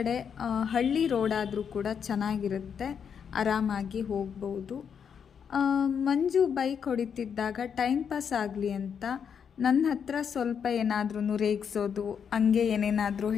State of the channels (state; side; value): quieter; right; 7.3 dB